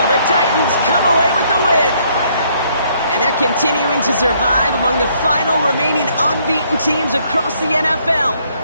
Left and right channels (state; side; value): inverted; both; correlation -0.68